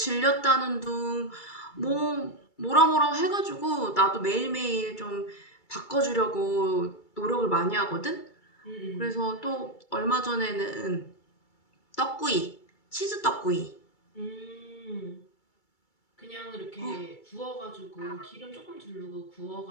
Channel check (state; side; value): late; right; 2.3 ms